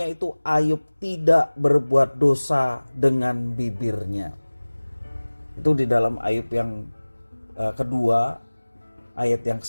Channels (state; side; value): inverted; both; correlation -1.00